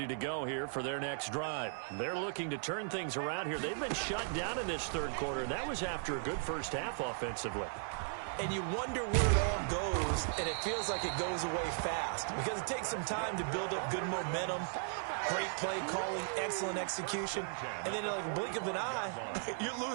to go here for their next drive. They're looking to turn things around here. They've been shut down in this 3rd quarter, and that was after a good first half offensively. And you wonder where it all goes, and it feels like it goes away fast because it takes some time to build up good momentum, great play calling, excellent execution, and then like a blink of an eye, you're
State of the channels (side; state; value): left; silent; digital silence